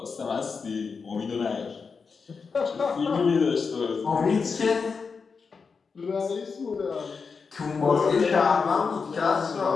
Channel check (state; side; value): quieter; right; 5.2 dB